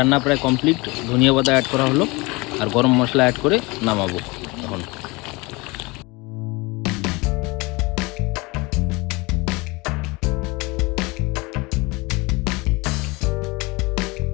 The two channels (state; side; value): quieter; right; 25.0 dB